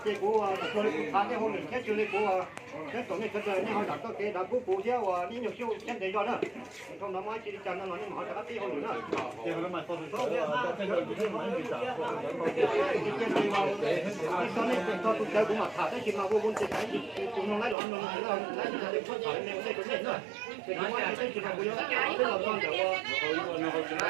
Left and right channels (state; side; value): drops out; left; at 17.8 s